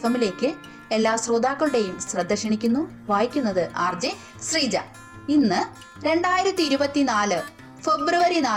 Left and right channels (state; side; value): identical; both; correlation 1.00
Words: എല്ലാ ശ്രോതാക്കളുടെയും ശ്രദ്ധ ക്ഷണിക്കുന്നു. വായിക്കുന്നത് RJ ശ്രീജ. ഇന്ന് 2024 ഫെബ്രുവരി